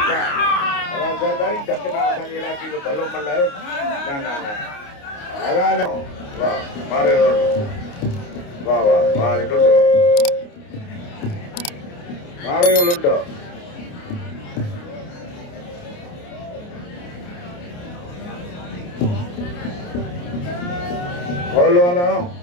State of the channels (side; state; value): right; late; 29 ms